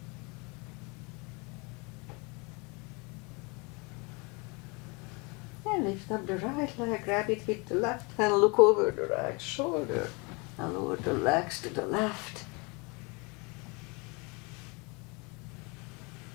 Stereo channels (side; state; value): right; quieter; 29.4 dB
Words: And lift up the right leg, grab it with the left hand, look over the right shoulder. And lower the legs to the left.